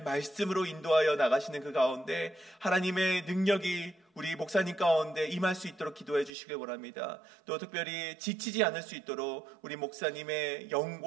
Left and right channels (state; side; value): drops out; left; at 6.3 s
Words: 말씀으로 인도하여 나가시는 그 가운데 하나님의 능력이 우리 목사님 가운데 임할 수 있도록 기도해 주시길 원합니다. 또 특별히 지치지 않을 수 있도록 우리 목사님의